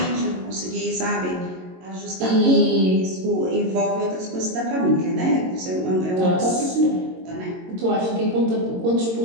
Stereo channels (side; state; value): left; late; 22 ms